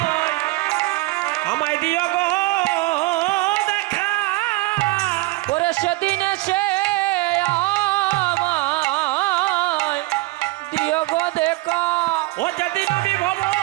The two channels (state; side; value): quieter; left; 20.8 dB